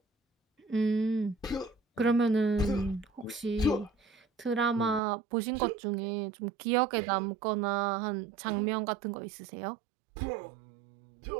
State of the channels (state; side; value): drops out; left; at 5.0 s